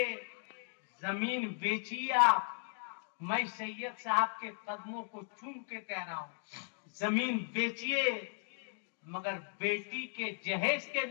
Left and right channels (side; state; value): right; silent; 53 dB below the other